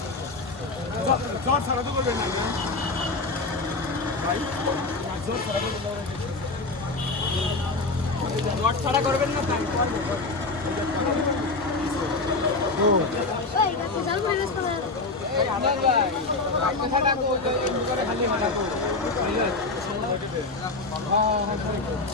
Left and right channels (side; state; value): right; quieter; 3.5 dB